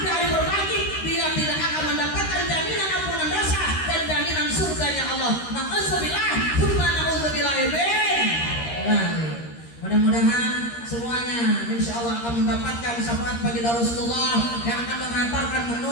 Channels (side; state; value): right; late; 13 ms